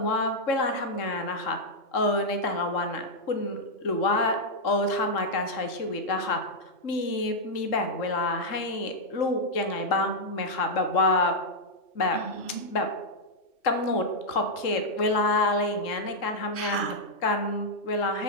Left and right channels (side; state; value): right; late; 3.6 ms